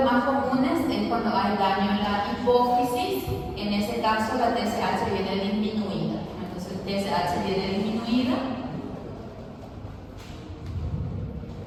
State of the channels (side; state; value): both; identical; correlation 1.00